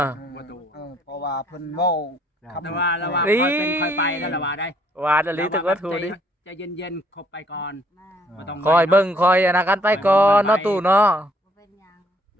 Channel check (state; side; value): normal; both; correlation 0.65